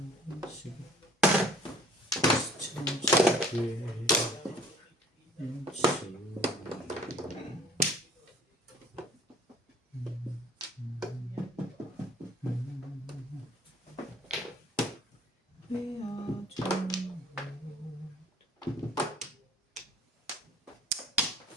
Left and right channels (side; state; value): both; normal; correlation 0.52